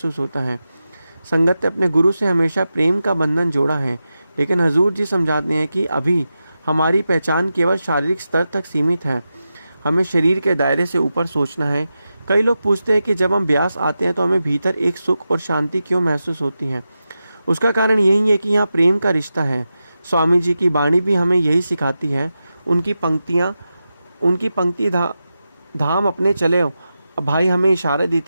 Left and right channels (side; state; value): both; inverted; correlation -0.91